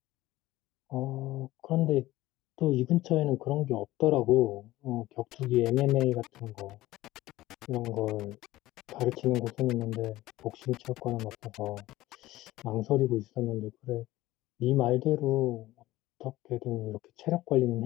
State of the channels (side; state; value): right; quieter; 16.9 dB